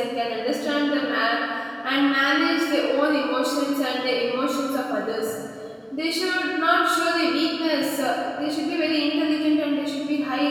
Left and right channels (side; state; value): both; identical; correlation 1.00